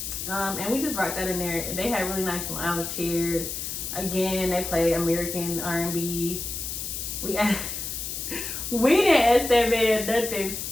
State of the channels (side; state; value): left; noise; hiss, 5 dB below the sound